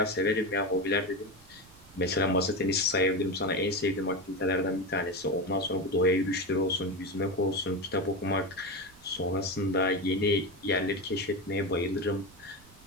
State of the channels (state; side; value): noise; right; rumble, 25 dB below the sound